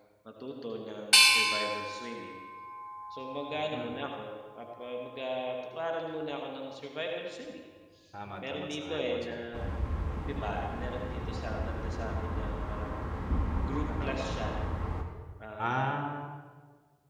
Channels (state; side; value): identical; both; correlation 1.00